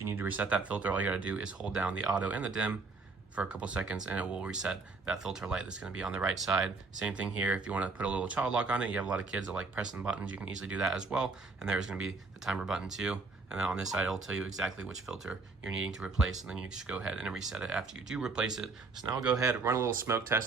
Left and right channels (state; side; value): quieter; left; 3.9 dB